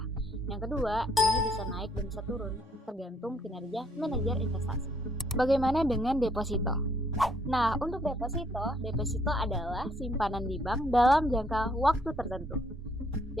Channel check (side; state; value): both; normal; correlation 0.67